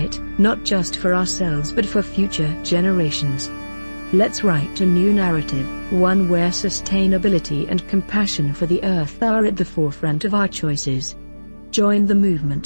not just for ourselves but for future generations. Let's write a new narrative, one where sustainability and compassion for the Earth are at the forefront of our choices. Join the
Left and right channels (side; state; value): both; inverted; correlation -1.00